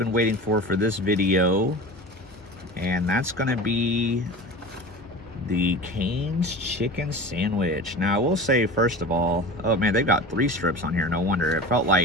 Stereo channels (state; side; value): normal; both; correlation 0.34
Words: waiting for this video, and that's going to be the Cane's chicken sandwich. Now, I will say, first of all, oh man, they've got 3 strips on here. No wonder. It felt